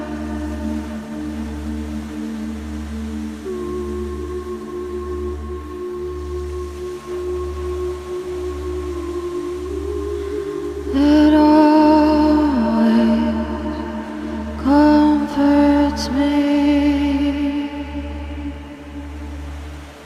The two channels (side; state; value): both; identical; correlation 1.00